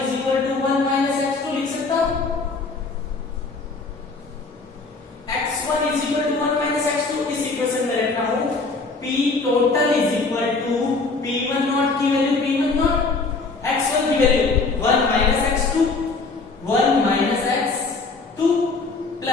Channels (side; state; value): right; quieter; 3.9 dB